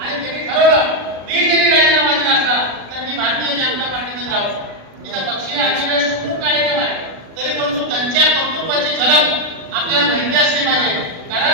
त्यांनी ठरवलं मी जरी राजीनामा दिला असला तर मी भारतीय जनता पार्टीमध्ये राहू. इथं पक्षीय अधिवेश खूप कार्यक्रम आहे, तरी परंतु त्यांच्या कर्तृत्वाची झलक आपल्याला माहिती असली पाहिजे.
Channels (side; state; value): left; late; 37 ms